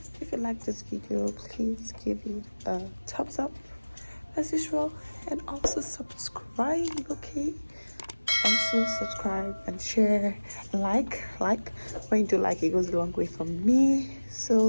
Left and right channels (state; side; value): inverted; both; correlation -1.00